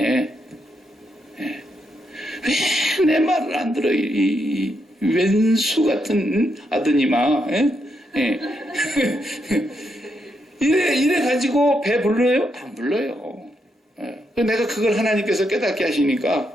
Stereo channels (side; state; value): both; normal; correlation 0.80